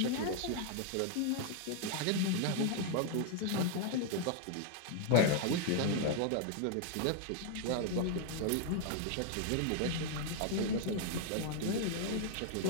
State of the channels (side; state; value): both; different; correlation 0.00